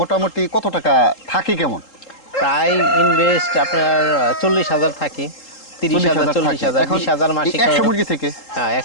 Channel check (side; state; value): right; late; 3.8 ms